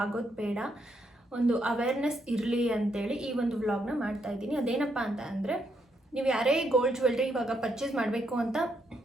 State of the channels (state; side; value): normal; both; correlation 0.77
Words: ಆಗೋದು ಬೇಡ, ಒಂದು ಅವೇರ್ನೆಸ್ ಇರಲಿ ಅಂತೇಳಿ ಈ ಒಂದು ವ್ಲಾಗ್ನ ಮಾಡ್ತಾ ಇದ್ದೀನಿ. ಅದೇನಪ್ಪ ಅಂತ ಅಂದರೆ, ನೀವು ಯಾರೇ ಗೋಲ್ಡ್ ಜ್ಯುವೆಲ್ರಿ ಇವಾಗ ಪರ್ಚೇಸ್ ಮಾಡಬೇಕು ಅಂತ